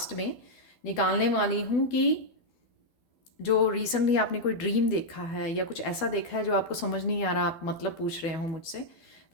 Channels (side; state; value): right; late; 12 ms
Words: में निकालने वाली हूँ कि जो रिसेंटली आपने कोई ड्रीम देखा है या कुछ ऐसा देखा है जो आपको समझ नहीं आ रहा, आप मतलब पूछ रहे हो मुझसे,